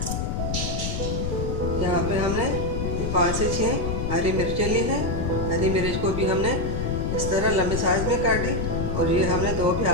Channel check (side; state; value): left; noise; rumble, 2 dB below the sound